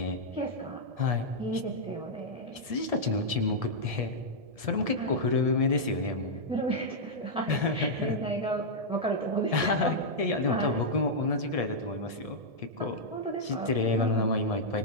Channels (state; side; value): late; left; 1.7 ms